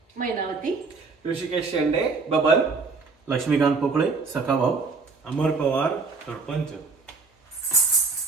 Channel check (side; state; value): left; quieter; 4.3 dB